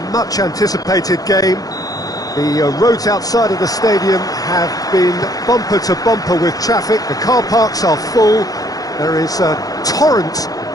much-anticipated game. The roads outside of the stadium have been bumper to bumper with traffic. The car parks are full. There is a torrent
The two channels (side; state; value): right; late; 0.18 ms